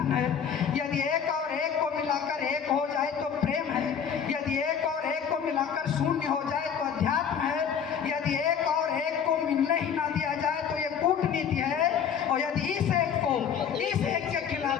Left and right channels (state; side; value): quieter; right; 7.6 dB